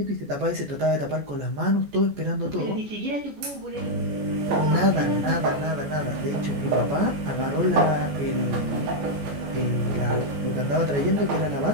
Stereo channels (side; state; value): left; late; 14 ms